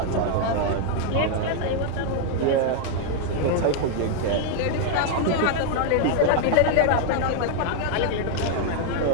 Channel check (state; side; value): different; both; correlation 0.00